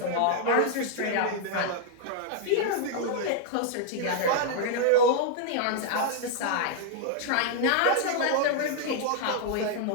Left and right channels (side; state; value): both; different; correlation -0.01